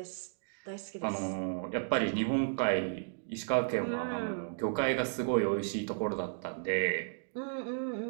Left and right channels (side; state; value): left; silent; digital silence